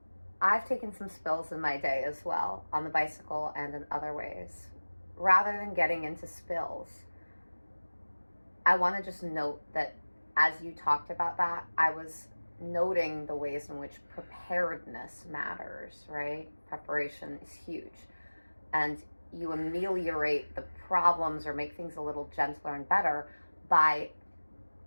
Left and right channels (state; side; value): inverted; both; correlation -1.00